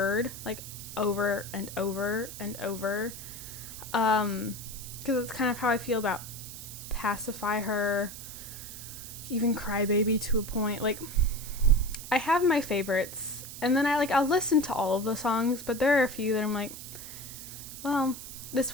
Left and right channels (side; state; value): right; noise; hiss, 11 dB below the sound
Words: like over and over and over. Because it's kind of how I feel about Pacify Her, even Crybaby to a point. Like, I have my favorites, and then I'll listen to all of the songs, but there are a few that I'm like, well, this